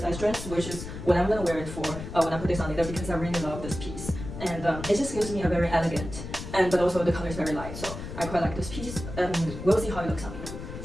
dress, which is what I'm gonna wear it for when I put this on later, because I really love this piece. And it just gives me a very elegant, but also the color is very light, so I quite like this piece, and we'll see how it looks on me.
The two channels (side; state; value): left; noise; rumble, 9 dB below the sound